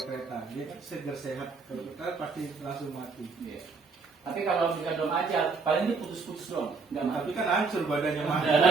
kereta. Dia kan segar sehat, kalau kita pasti langsung mati. Iya. Tapi kalau misalkan belum ajal, paling dia putus-putus doang, nggak mati. Tapi kan hancur badannya mati.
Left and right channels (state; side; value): quieter; left; 4.5 dB